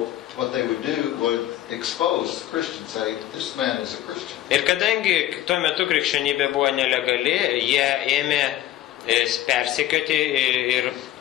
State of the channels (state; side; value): quieter; right; 13.5 dB